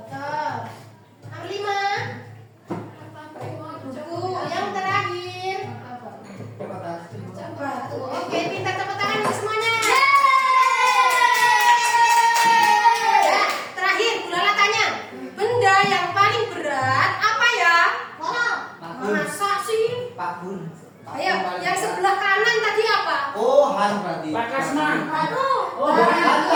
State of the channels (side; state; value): both; identical; correlation 1.00